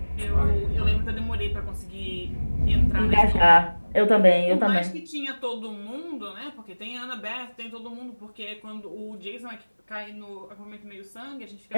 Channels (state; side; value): inverted; both; correlation -1.00